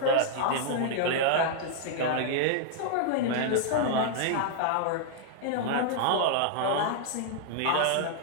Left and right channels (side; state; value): both; different; correlation -0.01